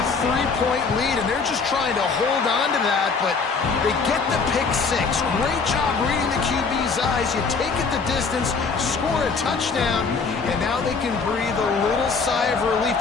3-point lead, and they're just trying to hold on to that, but they get the pick six. Great job reading the QB's eyes. You take it the distance, score a touchdown, and now they can breathe a little sigh of relief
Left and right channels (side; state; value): right; quieter; 4.8 dB